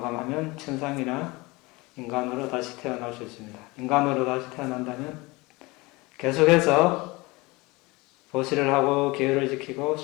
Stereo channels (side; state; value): right; quieter; 23.6 dB